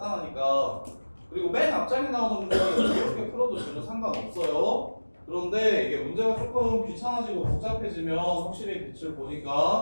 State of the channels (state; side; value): inverted; both; correlation -1.00